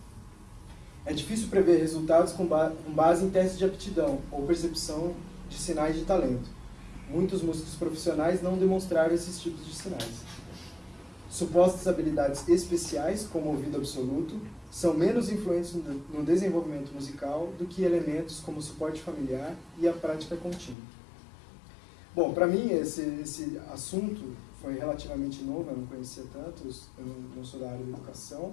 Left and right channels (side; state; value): right; drops out; at 20.8 s